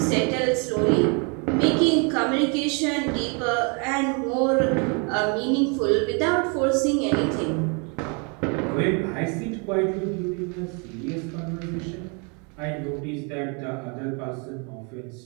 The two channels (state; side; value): quieter; left; 34.8 dB